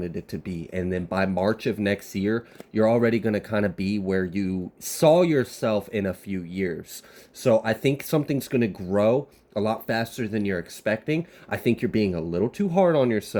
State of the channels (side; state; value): both; identical; correlation 1.00